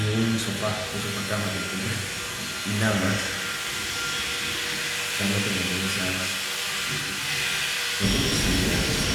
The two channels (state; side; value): identical; both; correlation 1.00